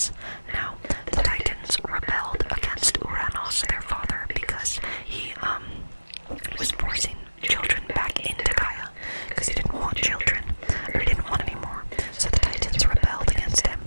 Now, the Titans rebelled against Uranus, their father, because he was forcing children back into Gaia, because he didn't want children, or he didn't want any more. So the Titans rebelled against him.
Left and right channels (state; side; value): inverted; both; correlation -1.00